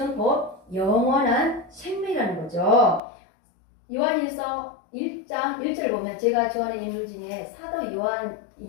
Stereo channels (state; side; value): drops out; right; at 3.0 s